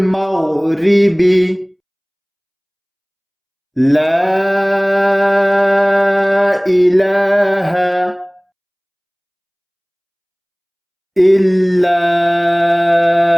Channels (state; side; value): identical; both; correlation 1.00